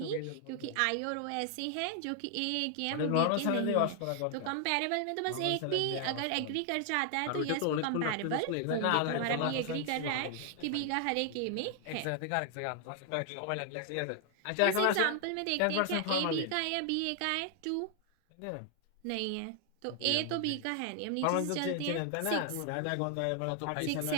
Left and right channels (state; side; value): different; both; correlation 0.00